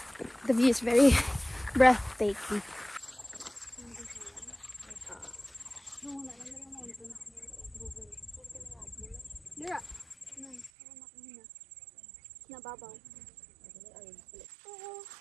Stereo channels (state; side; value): drops out; left; at 10.7 s